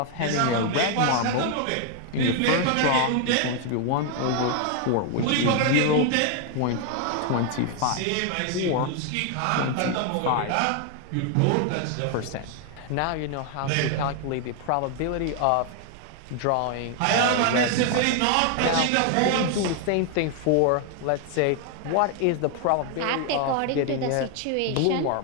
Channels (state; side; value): different; both; correlation 0.00